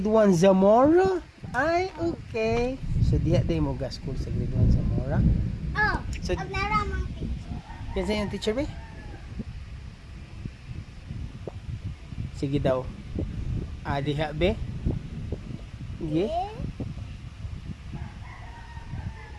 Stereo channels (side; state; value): both; identical; correlation 1.00